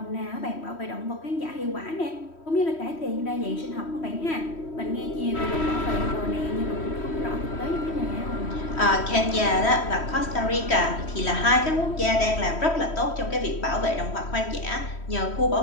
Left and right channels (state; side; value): late; right; 3.1 ms